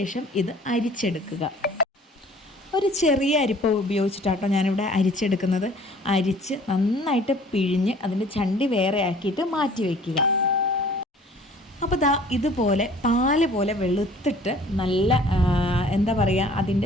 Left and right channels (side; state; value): both; normal; correlation 0.52